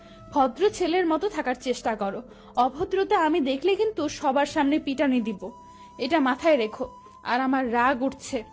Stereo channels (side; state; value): both; identical; correlation 1.00